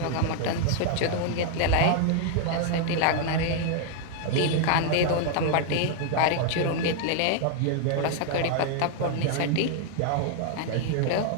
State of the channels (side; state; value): both; different; correlation 0.00